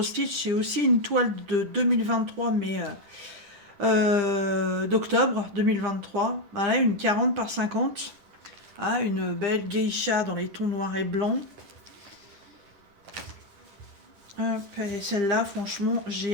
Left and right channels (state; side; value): late; left; 10 ms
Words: Stitch, c'est aussi une toile de 2023, mais d'octobre 2023. Voilà, une 40 par 50. Ah, une belle geisha dans les tons noirs et blancs. Celle-là, franchement,